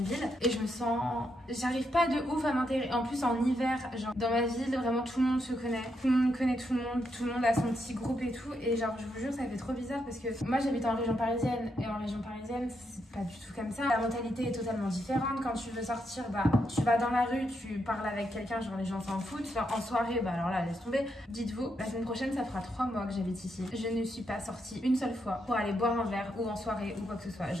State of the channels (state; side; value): normal; both; correlation 0.80